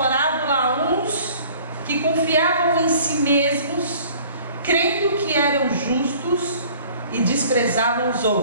a uns que confiavam em si mesmos, crendo que eram justos e desprezavam os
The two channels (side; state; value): both; inverted; correlation -0.51